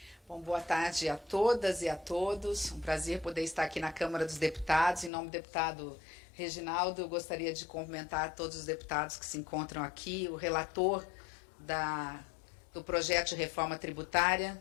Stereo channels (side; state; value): right; drops out; at 5.1 s